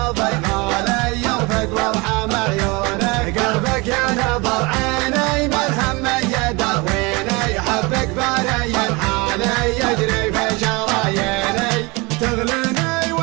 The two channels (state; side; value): quieter; left; 26.1 dB